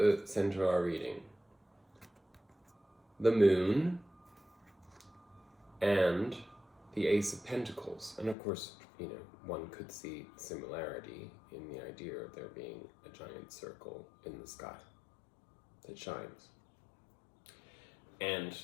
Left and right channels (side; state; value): right; drops out; at 8.3 s